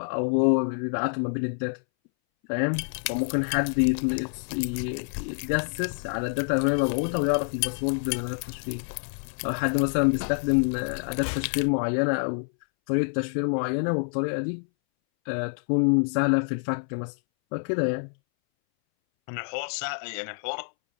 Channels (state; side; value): silent; right; 60 dB below the other